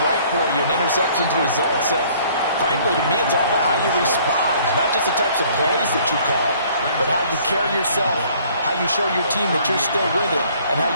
right for you, and interceptions result. So frankly, to me, it's all about how you respond, not just the types of plays that you call, but how you carry yourself, how you show your team that you're still with it, and how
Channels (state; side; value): inverted; both; correlation -0.58